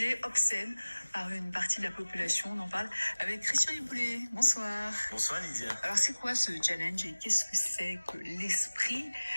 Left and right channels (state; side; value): inverted; both; correlation -1.00